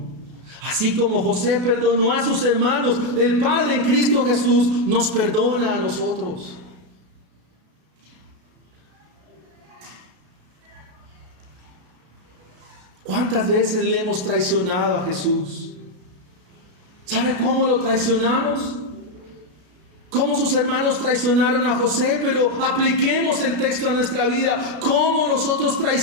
Así como José perdonó a sus hermanos, el Padre en Cristo Jesús nos perdona a nosotros. ¿Cuántas veces le hemos traicionado a Jesús? ¿Sabe cómo lo traicionamos? Cómo sus hermanos traicionaron a José, pero apliquemos el texto a nuestra vida. ¿Cómo nosotros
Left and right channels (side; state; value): left; late; 33 ms